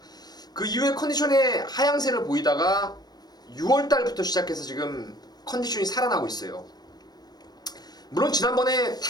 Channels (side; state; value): right; late; 0.19 ms